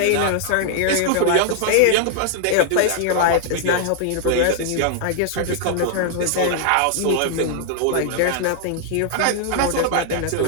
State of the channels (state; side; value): different; both; correlation 0.00